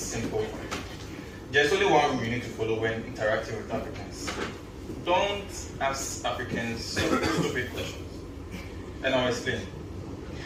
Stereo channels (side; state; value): both; identical; correlation 1.00